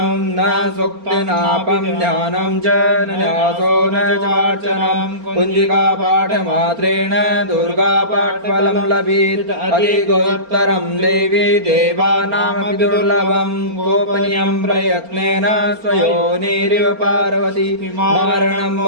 न सूक्तिनापं ध्यानं च न न्यासो न चार्चनं कुञ्जिकापाठमात्रेण दुर्गापाठफलं लभेत् अधिकोत्तरं देवी देवानामपि दुर्लभं गोपनीयं प्रयत्नेन स्वयोनिरिव पार्वती मारणं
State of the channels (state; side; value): late; left; 4.3 ms